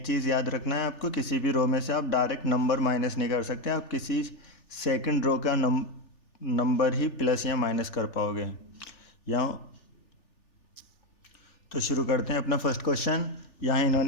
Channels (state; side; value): late; right; 3.4 ms